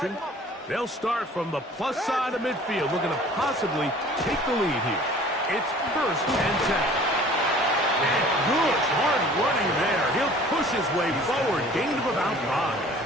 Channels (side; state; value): both; normal; correlation 0.49